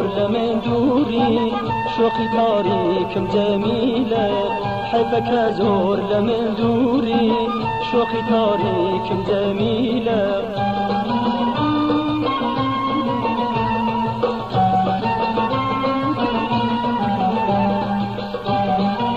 لمن دوری شوقی تاریکم جمیله حیفک زور لمن دوری شوقی تاریکم جمیله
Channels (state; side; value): identical; both; correlation 1.00